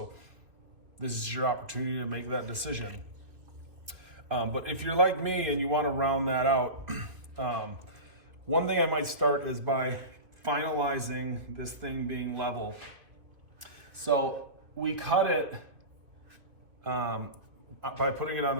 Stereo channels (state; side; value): late; left; 2.4 ms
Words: this is your opportunity to make that decision. But if you're like me and you want to round that out, one thing I might start is by finalizing this thing being level. So we cut it by putting it on